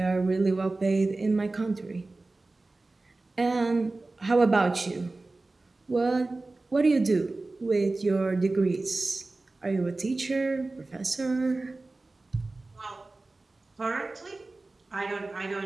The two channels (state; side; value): quieter; left; 3.2 dB